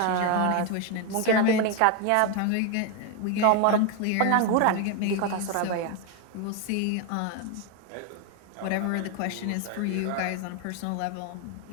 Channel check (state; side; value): different; both; correlation 0.02